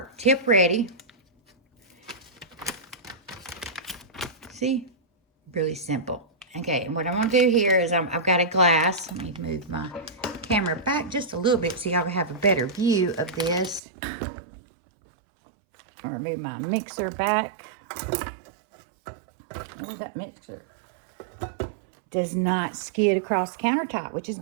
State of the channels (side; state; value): left; drops out; at 13.8 s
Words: tip ready. See, really simple. Okay, and what I'm going to do here is I've got a glass. Let me move my camera back just a little bit so y'all have a better view of this. I'll remove my mixer back. Oh, that mixer does not skid across the countertop, which is